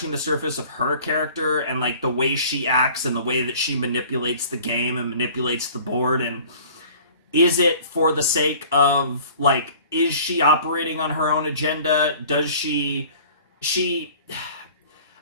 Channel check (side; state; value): both; inverted; correlation -0.47